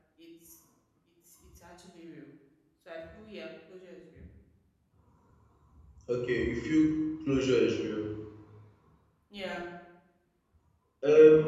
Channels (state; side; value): identical; both; correlation 1.00